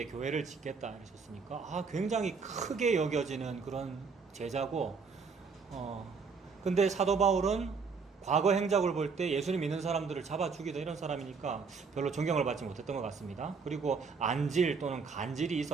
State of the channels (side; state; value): left; quieter; 5.2 dB